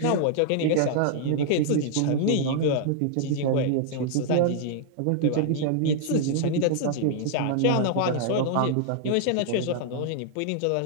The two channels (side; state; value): both; different; correlation -0.01